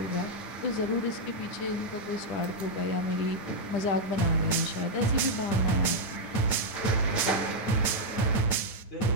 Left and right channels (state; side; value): late; right; 9.1 ms